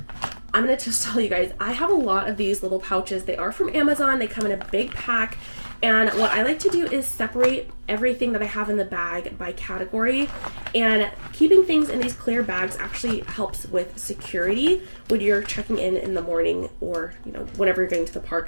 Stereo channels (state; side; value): inverted; both; correlation -1.00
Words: I'm going to just tell you guys, I have a lot of these little pouches. They are from Amazon. They come in a big pack. And what I like to do is separate everything that I have in the bag by category. And keeping things in these clear bags actually helps with security when you're checking in the morning, or, you know, whenever you're getting to the